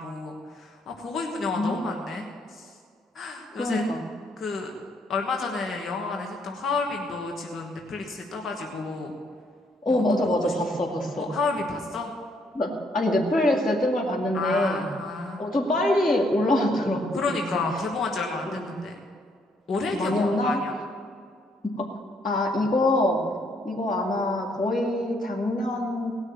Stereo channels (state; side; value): normal; both; correlation 0.70